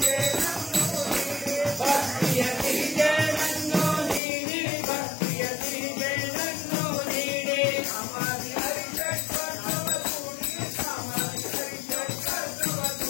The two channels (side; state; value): right; drops out; at 4.2 s